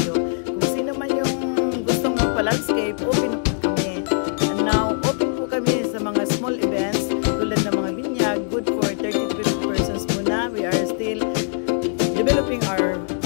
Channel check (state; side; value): silent; right; 59 dB below the other